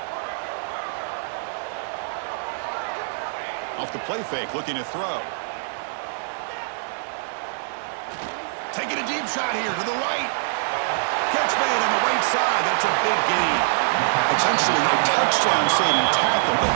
Off the play fake, looking to throw. Taking a deep shot here to the right. Catch made on the right side. That's a big gain. Potentially a touchdown-saving tackle, but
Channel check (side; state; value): left; silent; digital silence